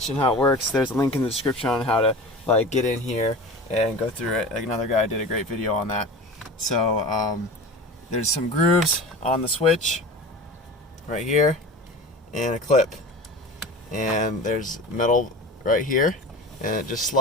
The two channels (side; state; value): both; normal; correlation 0.33